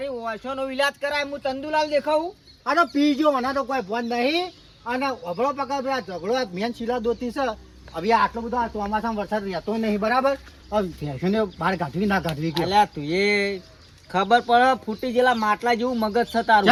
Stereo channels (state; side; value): identical; both; correlation 1.00